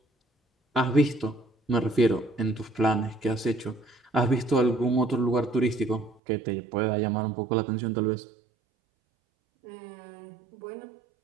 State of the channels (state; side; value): drops out; left; at 6.2 s